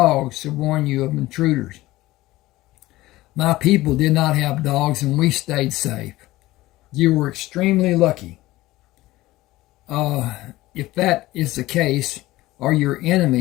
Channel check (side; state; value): right; quieter; 17.8 dB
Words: to warn you of intruders. My people did not have dogs, and we stayed safe. You were extremely lucky. If that is the case, or your